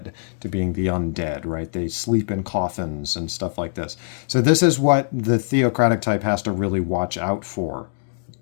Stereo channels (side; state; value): right; silent; digital silence